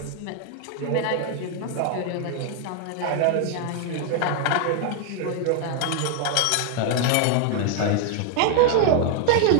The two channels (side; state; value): both; different; correlation 0.00